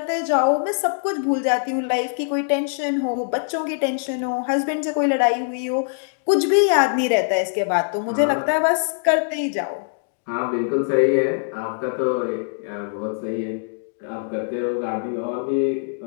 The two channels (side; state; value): right; silent; digital silence